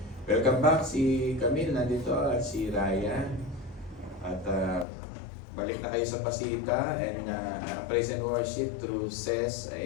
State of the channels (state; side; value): drops out; right; at 4.9 s